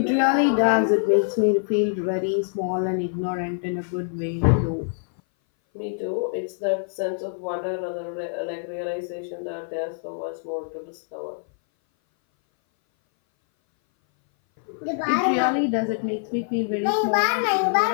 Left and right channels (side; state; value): right; silent; 59 dB below the other